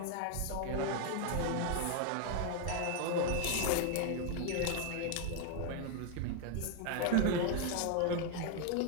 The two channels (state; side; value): different; both; correlation 0.01